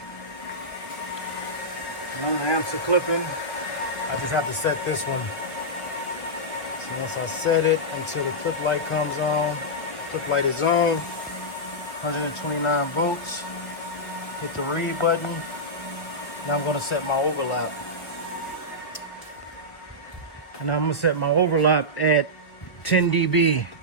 One of the amps are clipping. I just have to set this one. So once I set it until the clip light comes on, clip light is on, 129 volts. Hit the read button. Now I'm gonna set my overlap. And I'm gonna set my overlap at 10 dB.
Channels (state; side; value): late; right; 1.1 ms